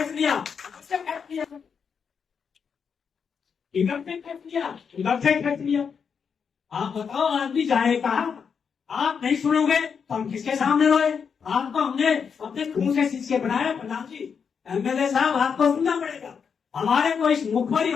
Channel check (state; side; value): quieter; right; 6.5 dB